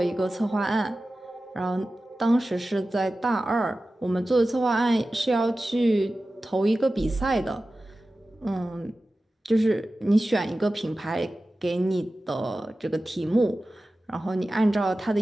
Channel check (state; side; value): normal; both; correlation 0.95